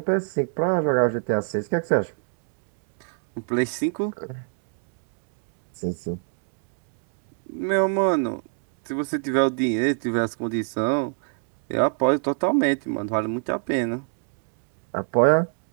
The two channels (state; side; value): silent; left; 61 dB below the other